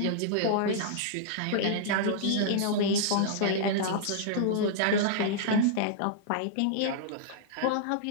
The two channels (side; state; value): both; different; correlation -0.02